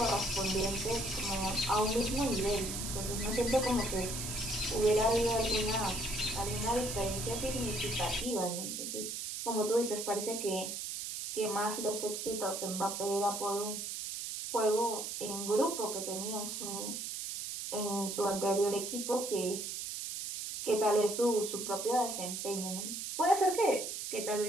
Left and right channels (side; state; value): right; noise; hiss, 5 dB below the sound